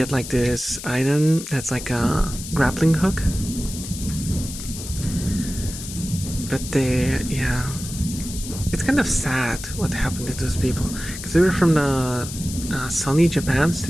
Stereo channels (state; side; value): noise; left; hiss, 10 dB below the sound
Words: like this item that's like a grappling hook. But yeah, it's kind of sad what happened to those people, because they were from the Sony Japan